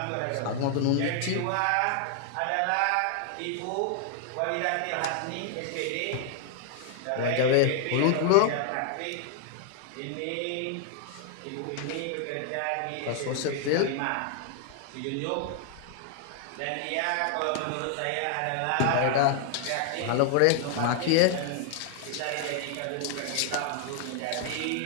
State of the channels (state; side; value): different; both; correlation 0.00